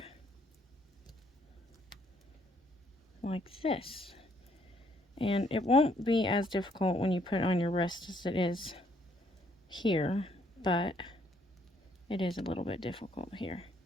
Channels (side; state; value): both; normal; correlation 0.68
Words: like this. And it won't be as difficult when you put it on your wrist as it is here, but it is a little bit difficult here.